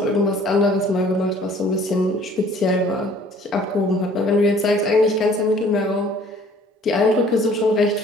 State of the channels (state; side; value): normal; both; correlation 0.54